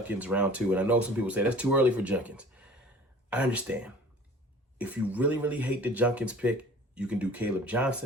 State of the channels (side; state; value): both; normal; correlation 0.46